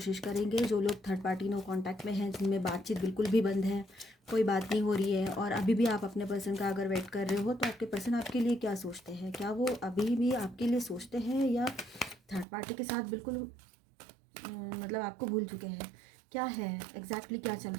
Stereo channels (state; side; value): drops out; left; at 12.5 s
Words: करेंगे। जो लोग थर्ड पार्टी नो कांटेक्ट में हैं, जिनमें बातचीत बिल्कुल भी बंद है, कोई बात नहीं हो रही है और अभी भी आप अपने पर्सन का अगर वेट कर रहे हो, तो आपके पर्सन आपके लिए क्या सोचते हैं? क्या वो अभी भी आपके लिए सोचते हैं या थर्ड पार्टी के साथ बिल्कुल मतलब आपको भूल चुके हैं? क्या है एग्जैक्टली क्या चल